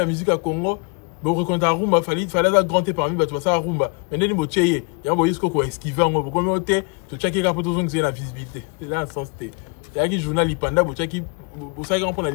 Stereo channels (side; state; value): right; quieter; 32.6 dB